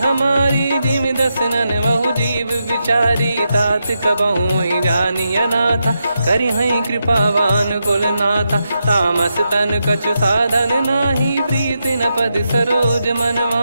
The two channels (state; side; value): inverted; both; correlation -0.85